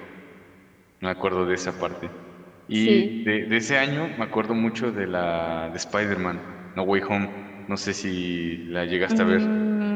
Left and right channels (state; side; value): identical; both; correlation 1.00